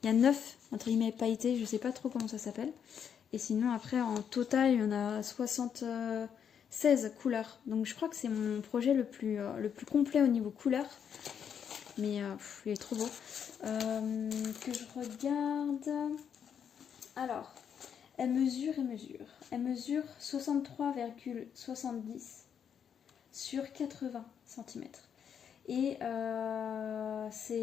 Il y a 9, entre guillemets, pailletés. Je sais pas trop comment ça s'appelle. Et sinon, après, en total, il y en a 76 couleurs. Donc je crois que c'est mon projet le plus complet au niveau couleur. Mais il est trop beau. Que je regarde... Alors, elle mesure. Elle mesure 63,70 sur 80 cm. Et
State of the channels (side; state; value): right; quieter; 7.9 dB